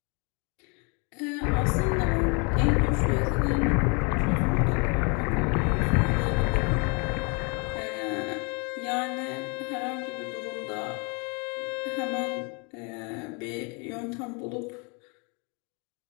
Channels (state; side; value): quieter; right; 33.2 dB